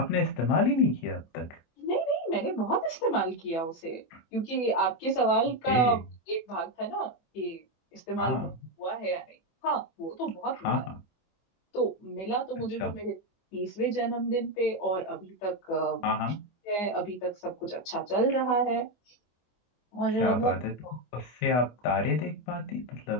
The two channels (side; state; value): right; late; 24 ms